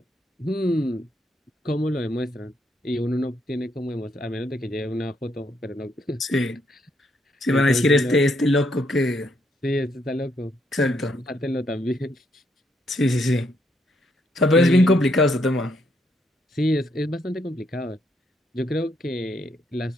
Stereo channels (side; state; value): both; normal; correlation 0.74